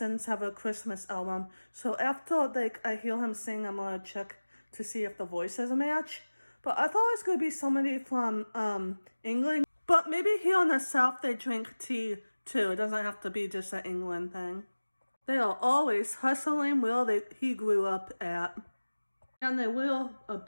have a Christmas album. So after like I hear him sing, I'm gonna check to see if the voices match. But I thought it was gonna be somebody from England. But maybe here in the South they drink tea too. It doesn't have to be just an England thing. They are always hustling where he grew up at. And they wear a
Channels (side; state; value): both; inverted; correlation -1.00